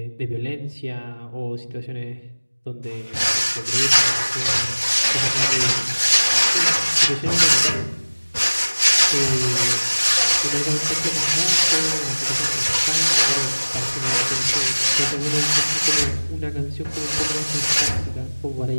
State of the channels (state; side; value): inverted; both; correlation -1.00